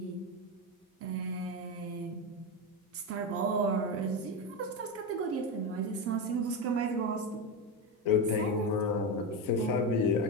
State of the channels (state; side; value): normal; both; correlation 0.14